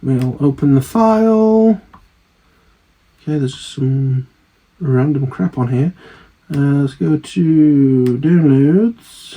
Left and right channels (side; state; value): both; identical; correlation 1.00